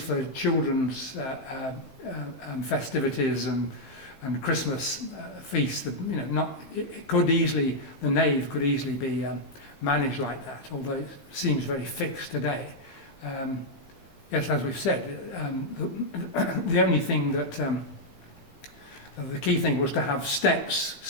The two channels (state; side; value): late; right; 15 ms